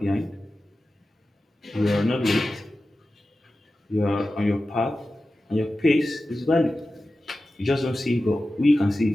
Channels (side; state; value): both; normal; correlation 0.94